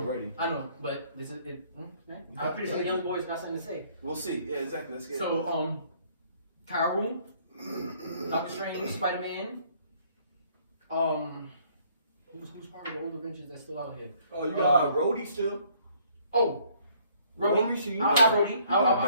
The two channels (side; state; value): both; inverted; correlation -0.62